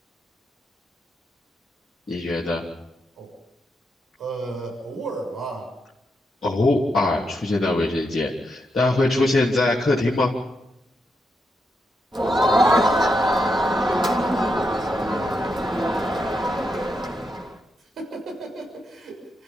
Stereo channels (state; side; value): normal; both; correlation 0.83